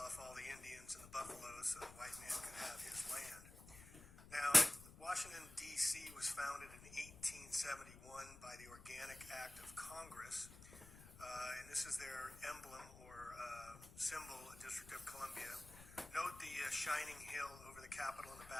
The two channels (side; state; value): left; noise; rumble, 17 dB below the sound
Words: off all the Indians and the buffaloes so the white man could have his land. Now, Washington, D.C. was founded in 1871 by the Organic Act of Congress, and this is their emblem or symbol, District of Columbia. Note the shining hill over the Capitol in the